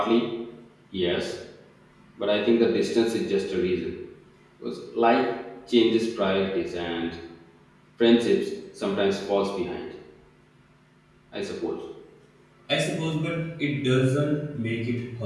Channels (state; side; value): identical; both; correlation 1.00